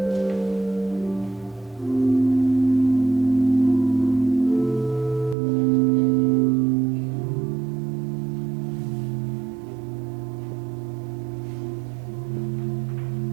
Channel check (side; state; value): left; drops out; at 5.4 s